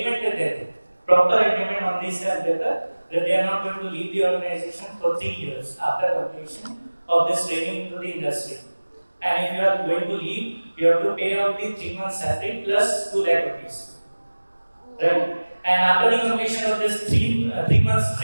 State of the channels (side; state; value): both; inverted; correlation -1.00